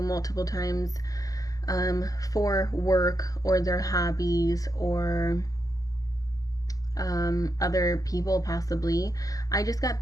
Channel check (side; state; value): right; late; 0.17 ms